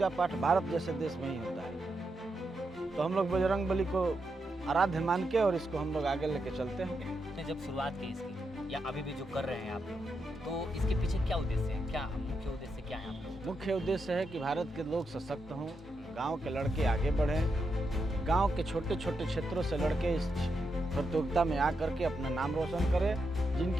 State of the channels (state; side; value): normal; both; correlation 0.84